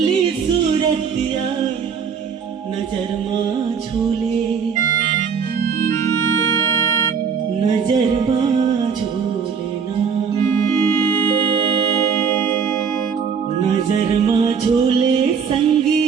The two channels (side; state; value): left; quieter; 6.4 dB